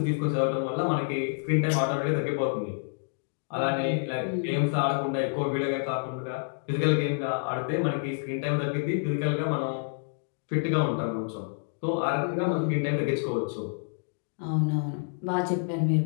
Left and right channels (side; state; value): right; silent; digital silence